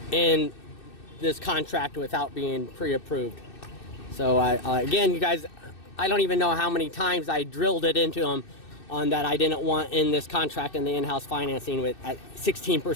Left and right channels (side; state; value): right; late; 2.6 ms